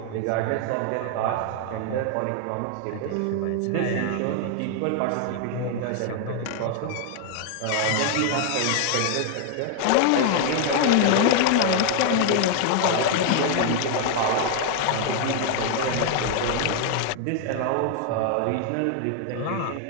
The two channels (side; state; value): both; different; correlation 0.00